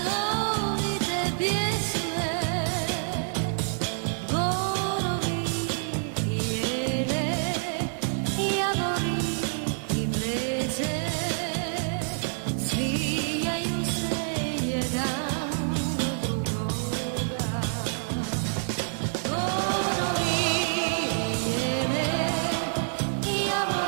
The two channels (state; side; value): silent; left; digital silence